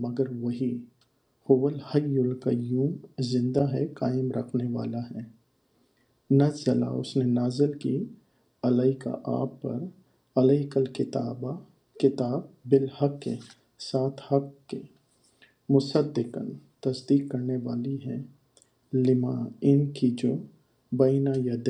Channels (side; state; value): both; identical; correlation 1.00